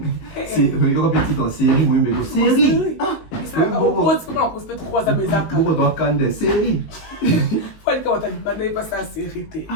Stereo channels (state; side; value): late; right; 19 ms